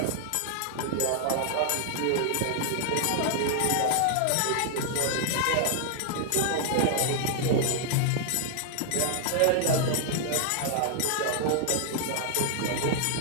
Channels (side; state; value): both; different; correlation 0.00